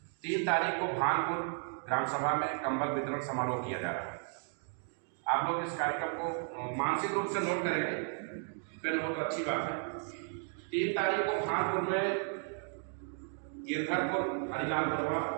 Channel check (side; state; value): left; silent; 55 dB below the other